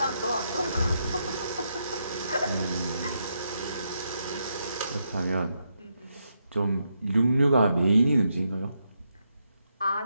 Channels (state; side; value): inverted; both; correlation -0.81